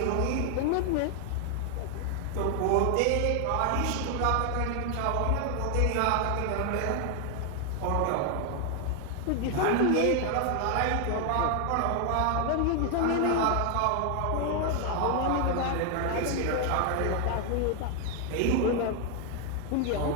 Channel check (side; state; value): both; different; correlation 0.00